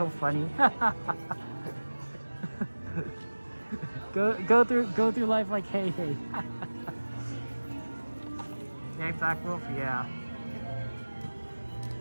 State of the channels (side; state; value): both; inverted; correlation -1.00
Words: funny. go through life like, hey, hey. Hey, Black Wolf, yeah.